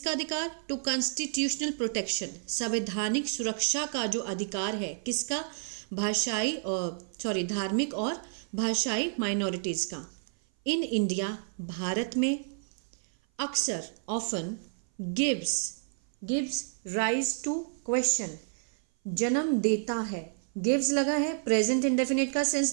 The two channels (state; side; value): silent; left; 56 dB below the other